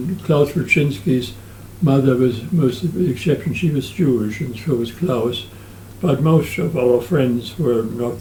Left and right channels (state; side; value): identical; both; correlation 1.00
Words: Klaus Wilczynski's mother was most of the exception. She was Jewish, and so was Klaus. But most of our friends were not